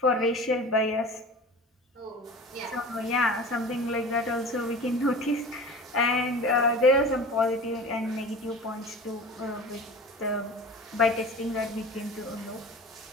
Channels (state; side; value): normal; both; correlation 0.37